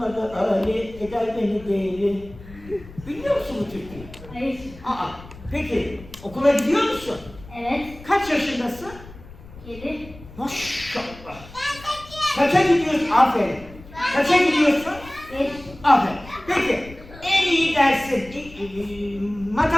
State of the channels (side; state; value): left; noise; rumble, 18 dB below the sound